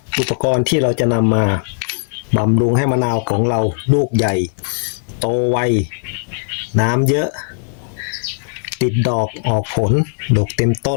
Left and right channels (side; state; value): right; silent; digital silence